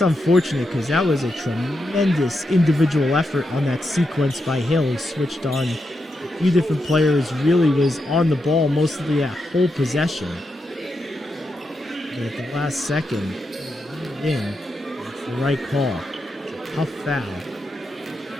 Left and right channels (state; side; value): normal; both; correlation 0.85